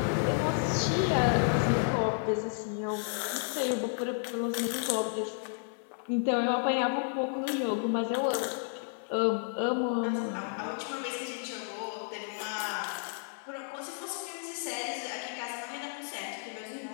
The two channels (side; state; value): right; silent; 57 dB below the other